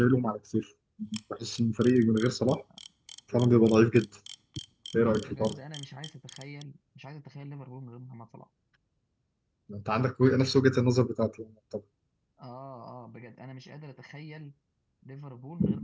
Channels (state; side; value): identical; both; correlation 1.00